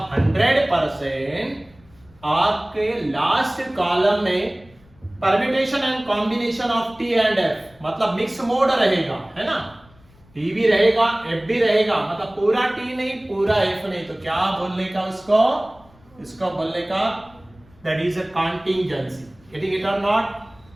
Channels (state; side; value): noise; left; rumble, 28 dB below the sound